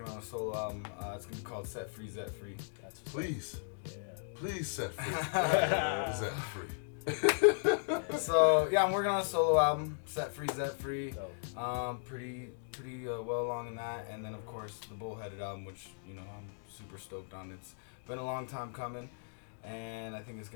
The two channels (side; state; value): right; silent; digital silence